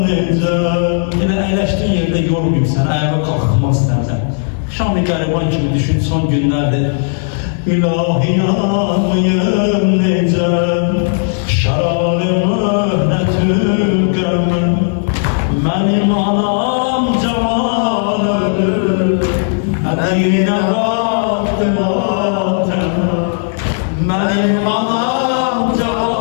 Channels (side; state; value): right; silent; digital silence